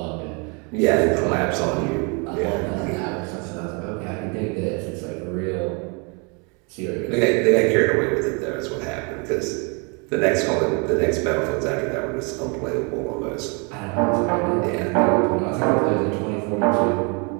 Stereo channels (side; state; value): left; quieter; 33.3 dB